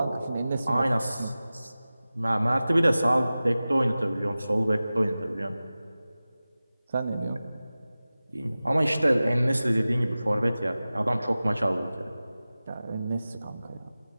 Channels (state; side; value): inverted; both; correlation -0.96